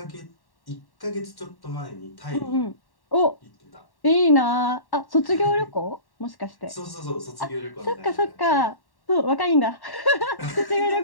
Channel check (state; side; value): late; right; 1.1 ms